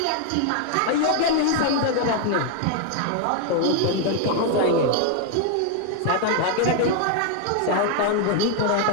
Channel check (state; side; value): different; both; correlation 0.00